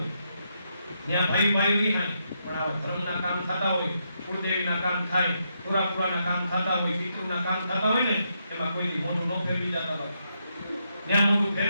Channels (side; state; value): both; inverted; correlation -0.80